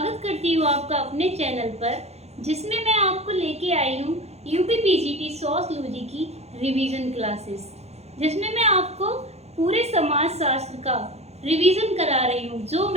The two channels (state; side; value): late; left; 0.31 ms